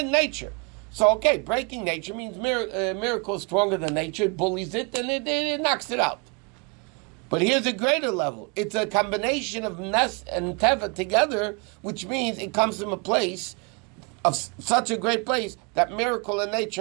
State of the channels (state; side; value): quieter; left; 32.3 dB